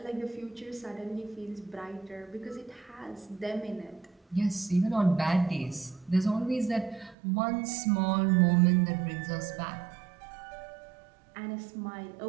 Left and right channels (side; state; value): left; drops out; at 7.2 s